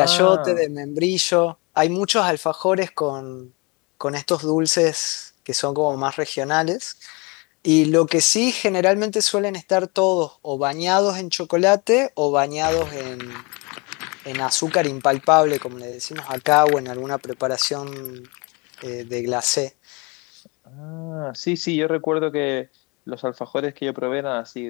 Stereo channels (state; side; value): quieter; right; 29.0 dB